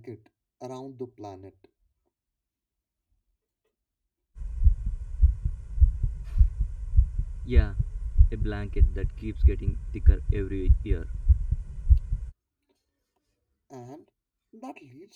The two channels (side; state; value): both; identical; correlation 1.00